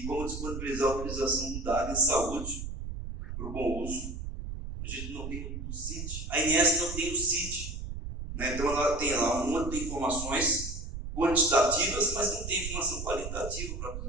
como disponibilizar a utilização do dado em saúde para o bom uso. A gente não tem o CID, a INS não tem o CID, né? Então ela tem lá uma de informações quantitativas, mas não tem informação qualitativa para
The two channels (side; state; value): right; noise; rumble, 7 dB below the sound